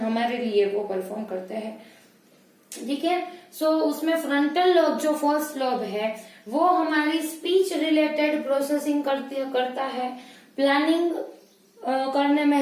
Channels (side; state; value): both; identical; correlation 1.00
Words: लिए वो परफॉर्म करते हैं। ठीक है, सो उसमें फ्रंटल लोब जो फर्स्ट लोब है वो हमारी स्पीच रिलेटेड प्रोसेसिंग करता है, प्लानिंग करने में